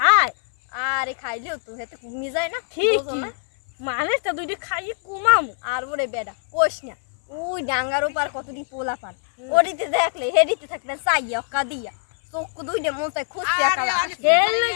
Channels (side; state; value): right; silent; 58 dB below the other